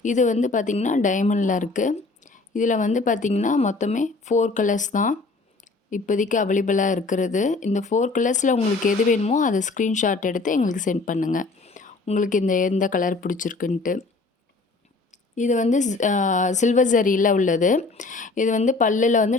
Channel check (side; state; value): right; quieter; 3.7 dB